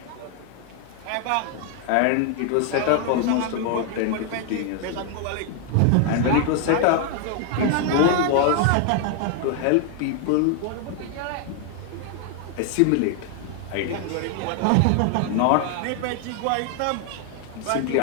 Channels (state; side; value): different; both; correlation 0.00